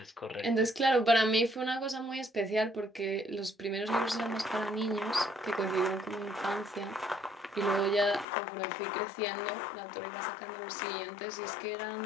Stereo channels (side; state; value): right; drops out; at 8.2 s